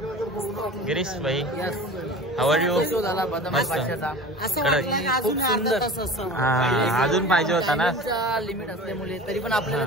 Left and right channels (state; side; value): normal; both; correlation 0.37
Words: गिरीश भाई, हाऊ आर यू? मस्त अजून पाहिजे होता ना, लिमिट असल्यामुळे तरी पण आपल्याला